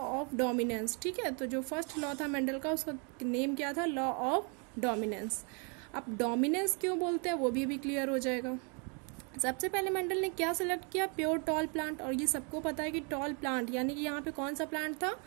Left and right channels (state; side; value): quieter; left; 36.2 dB